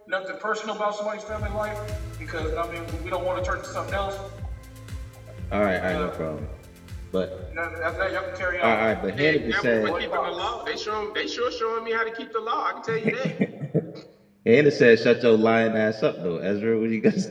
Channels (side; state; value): both; identical; correlation 1.00